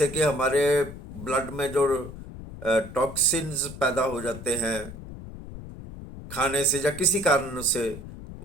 कि हमारे ब्लड में जो टॉक्सिन्स पैदा हो जाते हैं खाने से या किसी कारण से,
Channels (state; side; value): noise; left; rumble, 13 dB below the sound